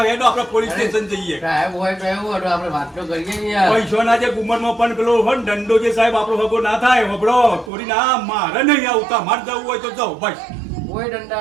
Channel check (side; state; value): left; drops out; at 7.7 s